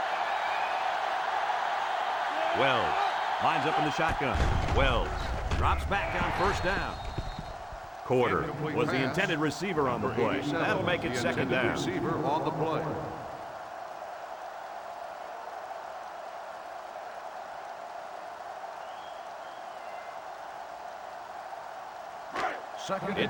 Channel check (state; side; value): identical; both; correlation 1.00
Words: Wells lines up in the shotgun. Wells drops back on first down. Quarter was the intended receiver on the play. That'll make it second down. Receiver on the play.